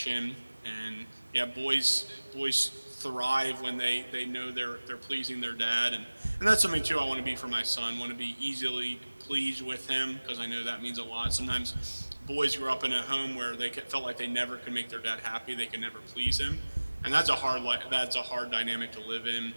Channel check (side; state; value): both; inverted; correlation -1.00